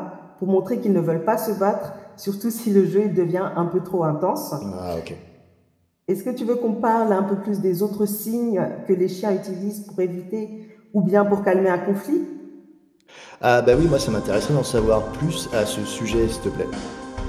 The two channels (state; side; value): identical; both; correlation 1.00